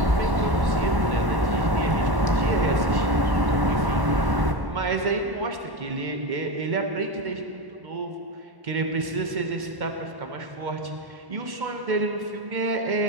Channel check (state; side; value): late; left; 1.0 ms